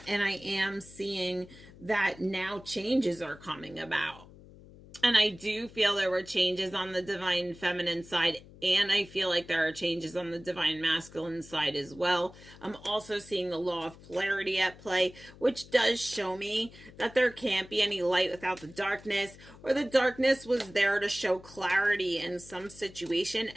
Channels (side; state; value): left; noise; hum, 20 dB below the sound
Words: I am seeing that now changes are coming about. And I do feel there were changes on the Divine Feminine side, and I feel like there are changes on the Divine Masculine side as well. I'm also seeing the law of polarity at play, which does show me that there can't be any light without the darkness, or the darkness was there to show clarity in some situation